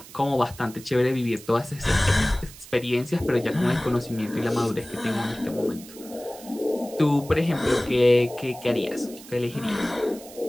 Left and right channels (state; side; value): noise; right; hiss, 18 dB below the sound